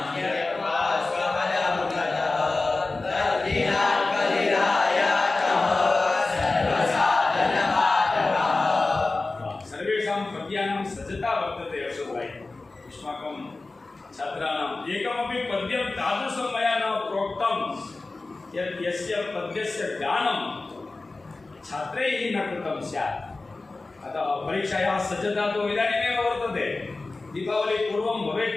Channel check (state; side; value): quieter; right; 3.4 dB